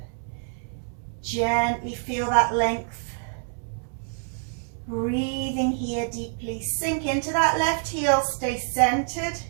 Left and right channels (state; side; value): silent; left; 61 dB below the other